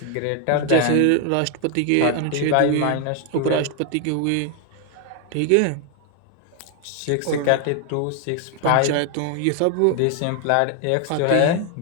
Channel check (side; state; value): both; different; correlation 0.00